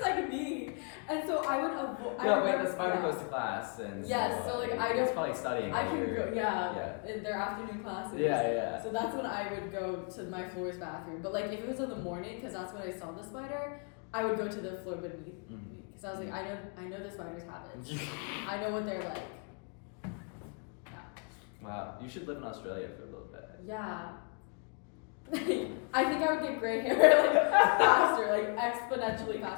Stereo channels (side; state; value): right; quieter; 39.0 dB